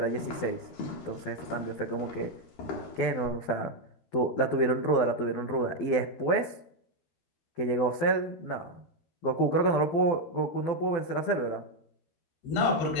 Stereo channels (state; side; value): late; right; 12 ms